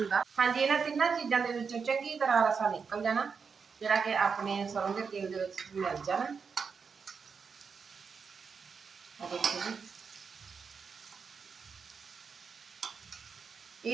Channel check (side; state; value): left; quieter; 5.7 dB